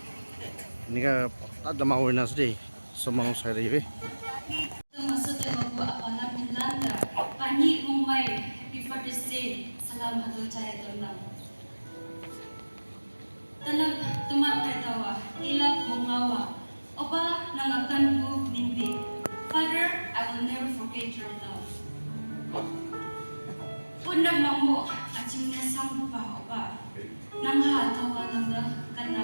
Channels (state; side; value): inverted; both; correlation -1.00